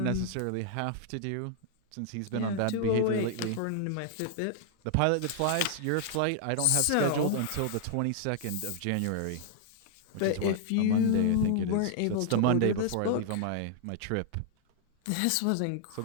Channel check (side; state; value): both; different; correlation -0.01